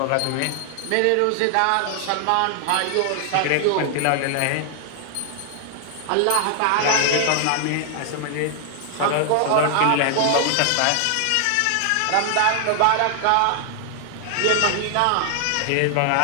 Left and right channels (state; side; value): different; both; correlation 0.00